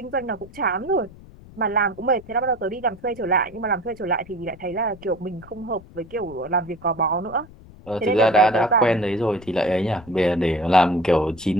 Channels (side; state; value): left; noise; rumble, 20 dB below the sound